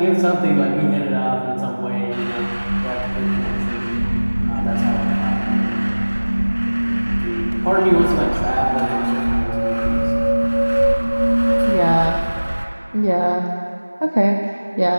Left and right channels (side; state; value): both; inverted; correlation -1.00